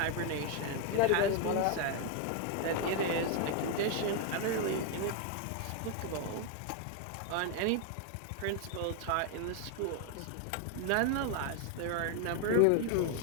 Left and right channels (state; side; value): different; both; correlation 0.01